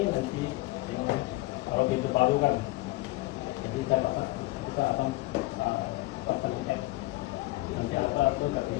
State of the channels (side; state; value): right; quieter; 19.7 dB